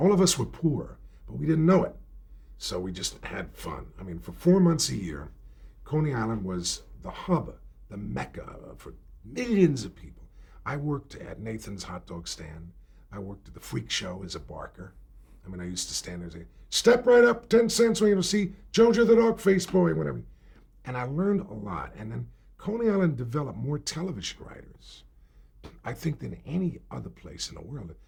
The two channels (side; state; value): both; identical; correlation 1.00